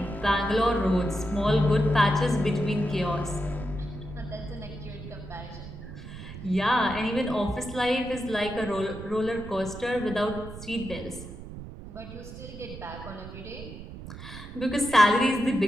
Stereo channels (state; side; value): noise; right; rumble, 12 dB below the sound